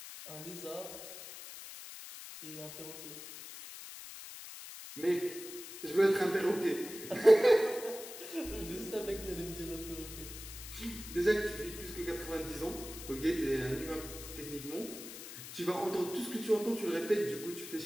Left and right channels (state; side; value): noise; left; hiss, 12 dB below the sound